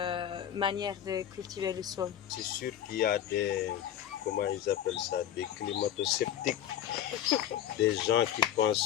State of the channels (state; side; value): quieter; right; 10.7 dB